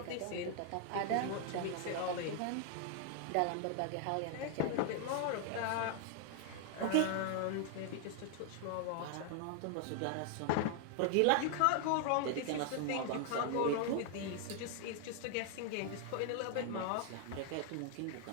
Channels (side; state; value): both; different; correlation 0.00